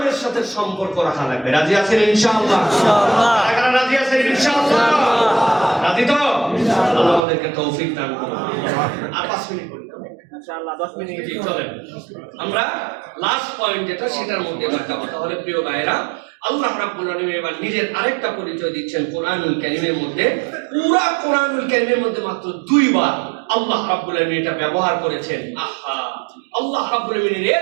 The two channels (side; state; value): left; drops out; at 7.2 s